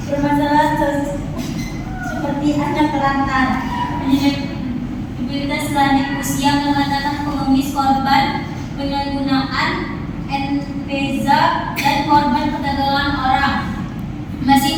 Permasalahan seperti anak terlantar, mobilitas lanjut usia, pengangkatan pengemis korban penyalahgunaan NPZA dan korban perdagangan orang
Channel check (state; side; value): identical; both; correlation 1.00